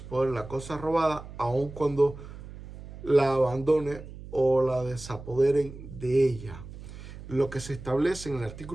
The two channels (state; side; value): noise; right; hum, 14 dB below the sound